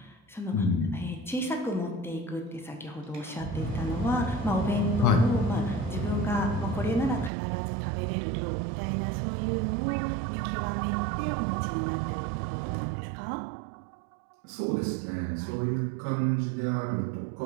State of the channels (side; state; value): left; drops out; at 7.3 s